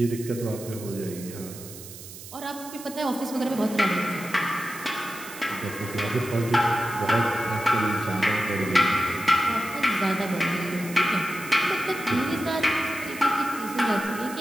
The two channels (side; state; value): right; noise; hiss, 14 dB below the sound